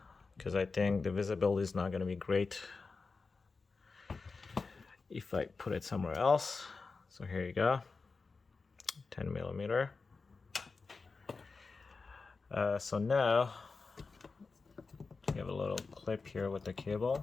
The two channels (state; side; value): quieter; right; 4.3 dB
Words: because I think the visibility is not going to be great if I put it somewhere else. So here you go, 10 millimeter. So now you have a little clip here with the